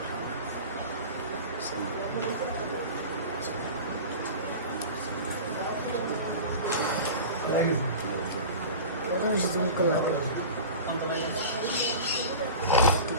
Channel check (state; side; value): inverted; both; correlation -0.33